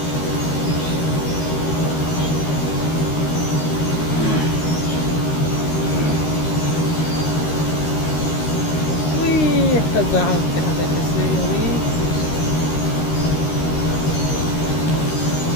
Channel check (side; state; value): right; late; 13 ms